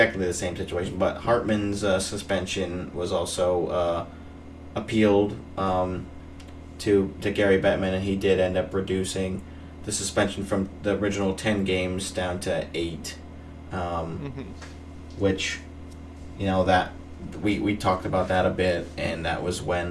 the same situation, but Hartman's suspension was also appealed to Gary Bettman, and he did end up reducing the suspension from the original 10 games down to 8, which, that we talked about that a bit, and that was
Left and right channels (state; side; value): identical; both; correlation 1.00